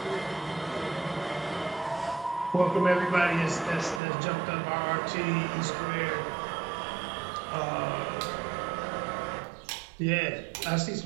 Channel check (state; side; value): drops out; left; at 4.0 s